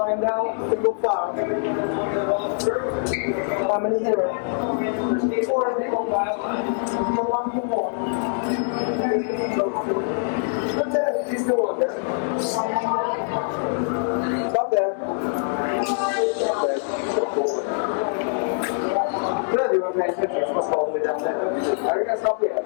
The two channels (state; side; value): silent; right; digital silence